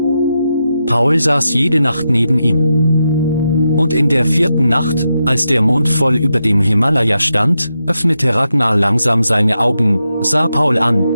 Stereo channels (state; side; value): inverted; both; correlation -0.87